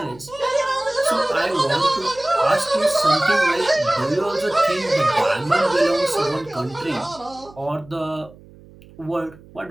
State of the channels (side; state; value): right; noise; hum, 23 dB below the sound